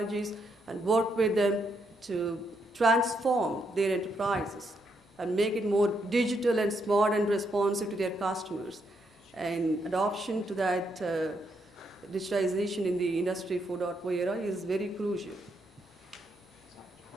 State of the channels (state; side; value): normal; both; correlation 0.78